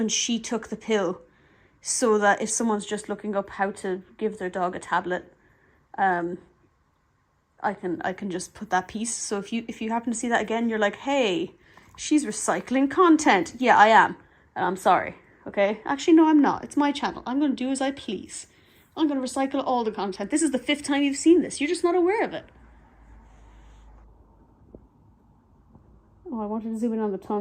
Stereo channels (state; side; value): identical; both; correlation 1.00